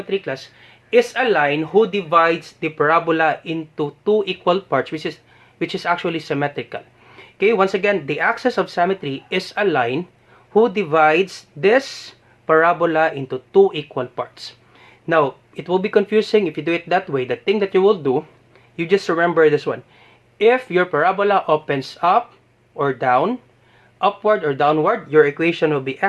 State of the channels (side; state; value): both; identical; correlation 1.00